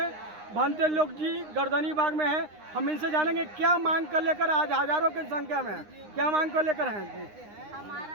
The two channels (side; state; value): left; late; 9.8 ms